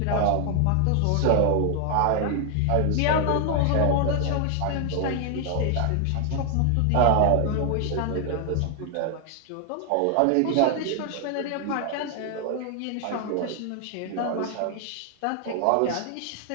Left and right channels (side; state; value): both; different; correlation 0.00